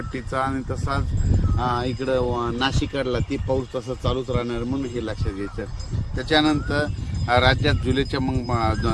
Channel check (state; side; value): identical; both; correlation 1.00